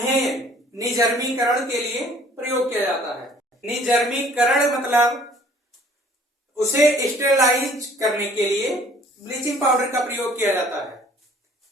निजर्मीकरण के लिए प्रयोग किया जाता है। निजर्मीकरण मतलब उसे स्टेरलाइज करने के लिए ब्लीचिंग पाउडर का प्रयोग किया जाता है।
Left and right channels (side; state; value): both; normal; correlation 0.56